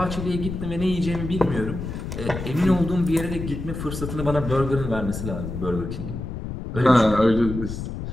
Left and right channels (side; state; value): left; noise; rumble, 6 dB below the sound